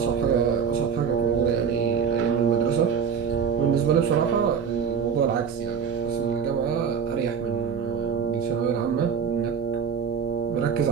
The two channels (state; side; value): quieter; left; 6.7 dB